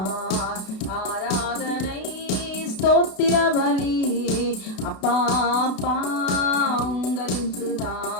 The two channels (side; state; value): right; late; 32 ms